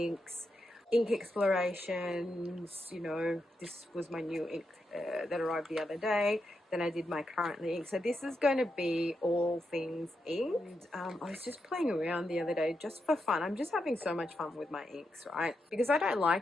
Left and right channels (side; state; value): both; normal; correlation 0.85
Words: ink explorations, you know, this was my new ink that arrived the other day. Then I did my currently ink. So this is going to be all things inked. I was just playing around the other day just for fun. I'm just having so much fun with my inks, right? Because I don't